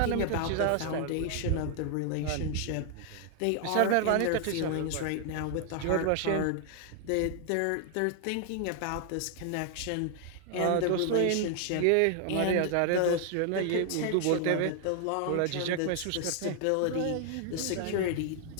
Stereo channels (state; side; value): different; both; correlation 0.00